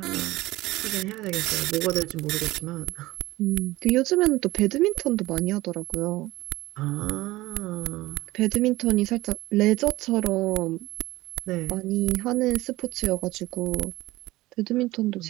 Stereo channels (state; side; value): quieter; left; 18.5 dB